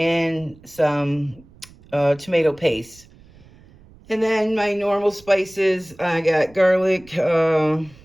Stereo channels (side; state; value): right; noise; rumble, 25 dB below the sound